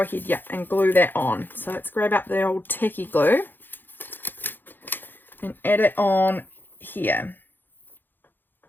ahead, and glue that on. So let's grab up the old tacky glue and add it on here.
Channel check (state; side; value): late; right; 0.093 ms